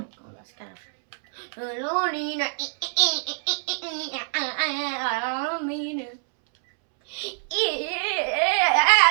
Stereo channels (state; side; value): silent; left; 62 dB below the other